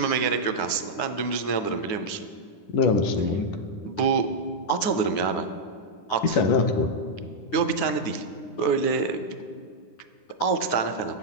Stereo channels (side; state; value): right; late; 10 ms